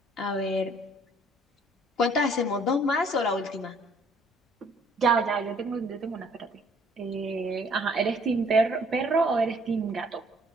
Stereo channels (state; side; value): normal; both; correlation 0.60